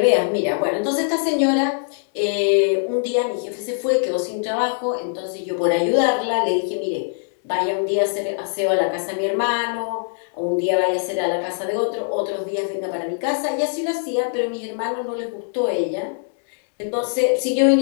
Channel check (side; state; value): right; silent; digital silence